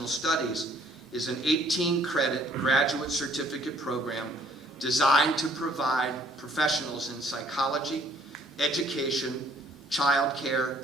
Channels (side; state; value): both; normal; correlation 0.61